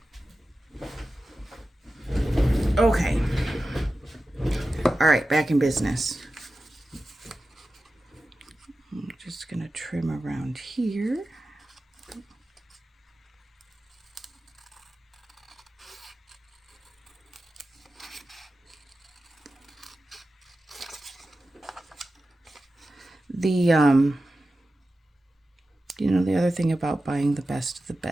Okay. All right, back in business. I'm just going to trim around here. You know, the other thing about buying the best of the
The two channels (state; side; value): normal; both; correlation 0.93